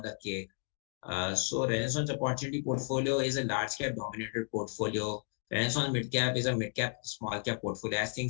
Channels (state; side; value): silent; right; 56 dB below the other